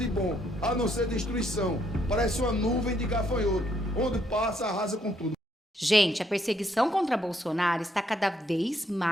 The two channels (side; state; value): both; normal; correlation 0.72